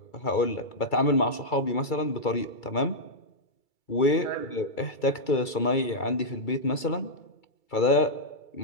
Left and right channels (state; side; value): late; right; 2.3 ms